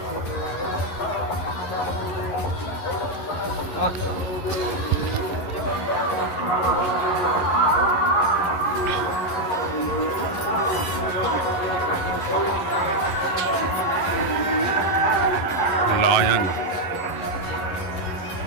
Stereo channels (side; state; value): right; late; 11 ms